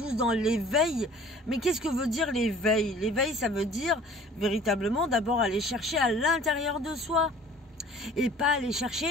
dans l'éveil. Mais qu'est-ce que veut dire l'éveil? L'éveil, ça veut dire véritablement d'abord aller chercher à l'intérieur de soi et pas aller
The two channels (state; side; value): normal; both; correlation 0.49